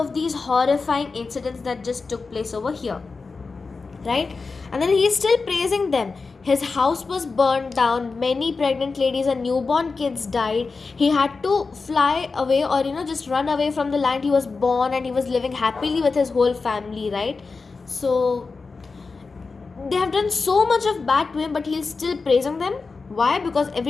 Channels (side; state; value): right; quieter; 4.3 dB